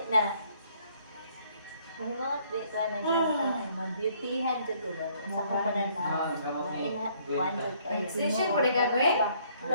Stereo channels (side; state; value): both; inverted; correlation -0.65